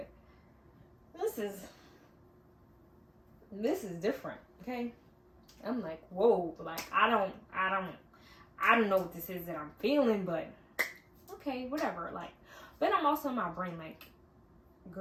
this is different. Okay. I'm like, whoa, like, I don't know what this is that I'm feeling, but okay, whatever. Like, but I'm also in my brain like,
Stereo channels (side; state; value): both; identical; correlation 1.00